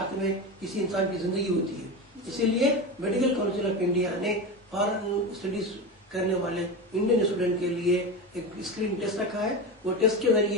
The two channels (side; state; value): both; normal; correlation 0.22